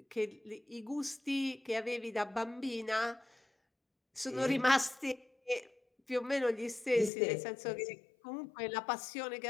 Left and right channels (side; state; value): right; drops out; at 7.1 s